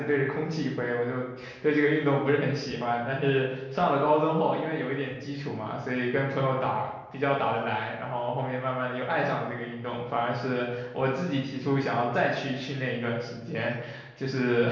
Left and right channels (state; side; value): identical; both; correlation 1.00